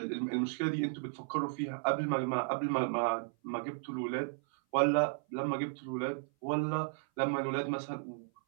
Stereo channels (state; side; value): silent; left; 55 dB below the other